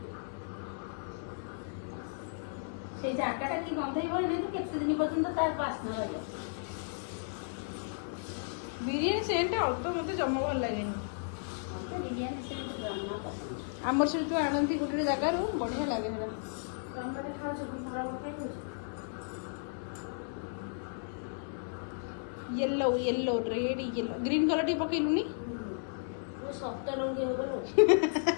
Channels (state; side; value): silent; right; digital silence